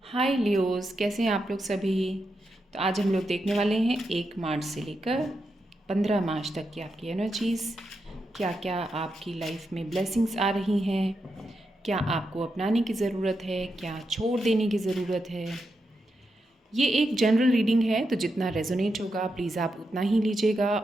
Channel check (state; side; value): normal; both; correlation 0.85